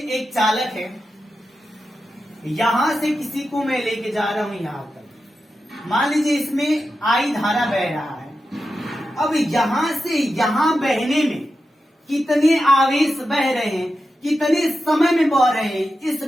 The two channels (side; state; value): both; normal; correlation 0.90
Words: एक चालक है, यहां से किसी को मैं लेके जा रहा हूं यहां तक। मान लीजिए इसमें आई धारा बह रहा है। अब यहां से यहां बहने में कितने आवेश बह रहे हैं, कितने समय में बह रहे हैं, इस